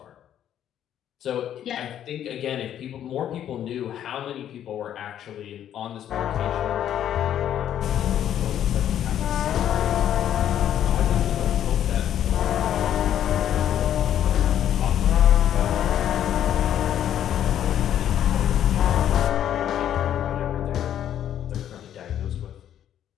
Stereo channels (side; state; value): right; quieter; 10.6 dB